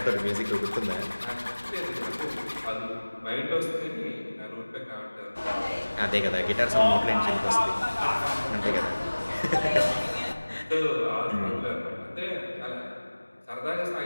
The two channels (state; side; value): inverted; both; correlation -1.00